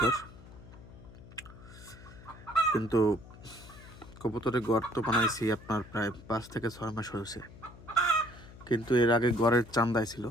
কিন্তু কবুতরের ঘর তো বানাইছি আপনার প্রায় 5 থেকে 6 মাস হয়েছে, কিন্তু এর আগে ঘরের চান্দাই ছিল।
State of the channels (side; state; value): left; noise; hum, 18 dB below the sound